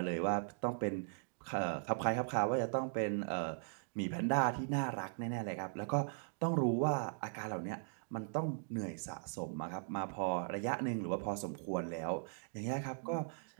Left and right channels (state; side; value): silent; left; digital silence